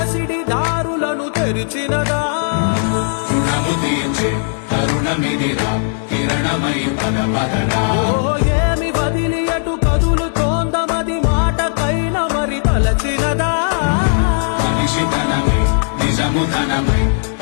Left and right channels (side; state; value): right; silent; 59 dB below the other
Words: దారులను తెరిచినదా రుణము తీర్చే కరుణమిదిరా కిరణమై పద పదరా ఓ ఏమి వదిలి అటు కదులుతోందమది మాటకైన మరి తలచినదా మనిషితనమై నిజముతనమై